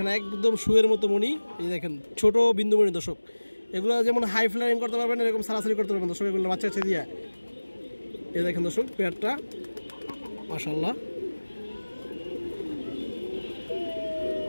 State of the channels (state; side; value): inverted; both; correlation -1.00